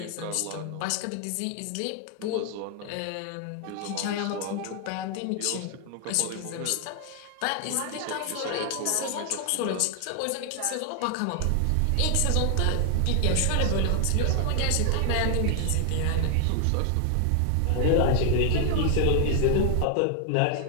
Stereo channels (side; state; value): both; different; correlation 0.00